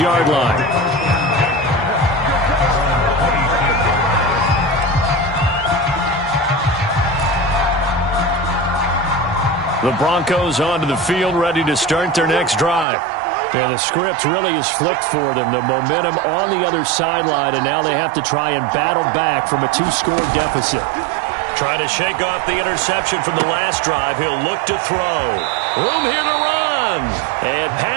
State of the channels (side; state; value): left; drops out; at 12.9 s